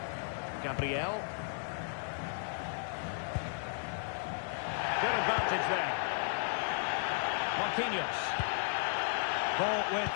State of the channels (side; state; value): right; silent; 55 dB below the other